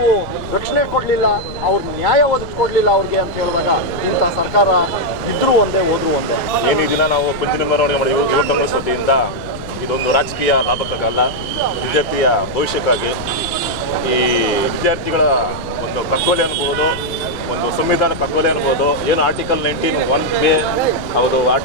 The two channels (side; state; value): left; noise; rumble, 12 dB below the sound